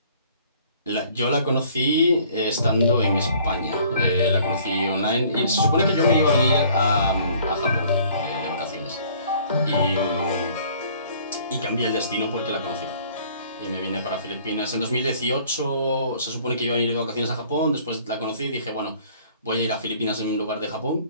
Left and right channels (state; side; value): inverted; both; correlation -0.56